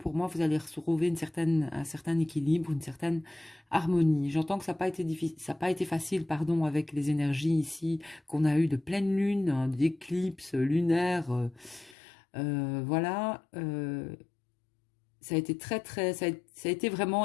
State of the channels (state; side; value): drops out; right; at 12.0 s